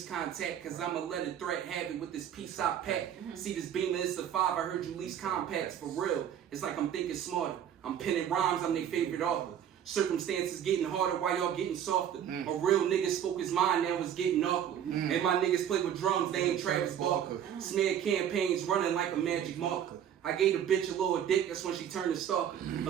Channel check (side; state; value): left; quieter; 9.5 dB